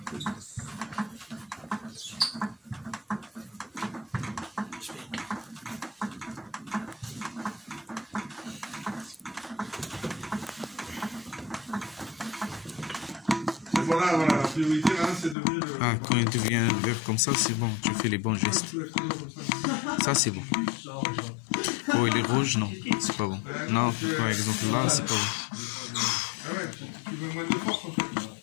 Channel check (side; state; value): right; drops out; at 15.4 s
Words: Voilà, la priorité, là, c'est devenu le... Ah, quand il devient vert comme ça, c'est bon, tu fais les bons gestes. Ça, c'est bon. Oh, il est rouge, non, c'est pas bon. Non, par exemple, là, c'est pas bon. Ah ouais, tu veux moins de force, en fait.